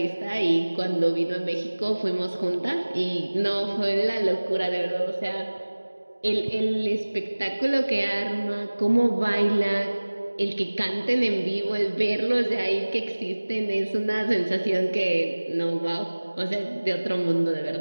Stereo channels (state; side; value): inverted; both; correlation -1.00